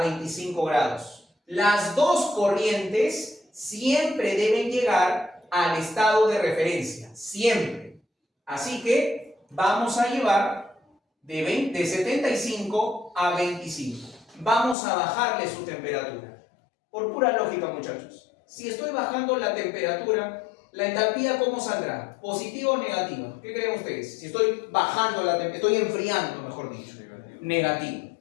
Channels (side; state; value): right; drops out; at 14.8 s